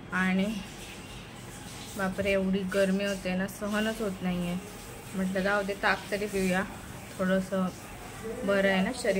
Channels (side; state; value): both; identical; correlation 1.00